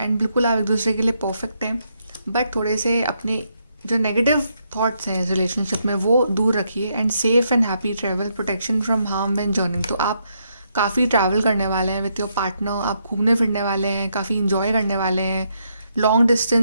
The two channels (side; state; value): both; inverted; correlation -0.77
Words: बिल्कुल आप एक दूसरे के लिए परफेक्ट हैं। बट थोड़े से अपने जो नेगेटिव थॉट्स हैं इस रिलेशनशिप में वो दूर रखिए, and safe and happy travel, protection from harm when journeying. तो आप काफ़ी ट्रैवल करने वाले हैं विथ योर पार्टनर, आप घूमने फिरने वाले हैं, काफ़ी इंजॉय करने वाले हैं, लॉन्ग